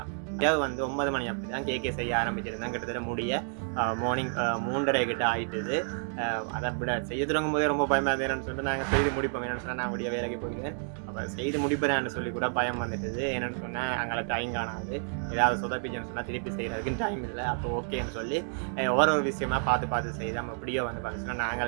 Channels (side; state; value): left; silent; 58 dB below the other